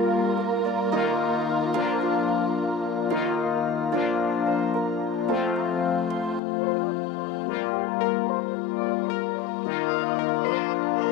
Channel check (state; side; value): drops out; right; at 6.4 s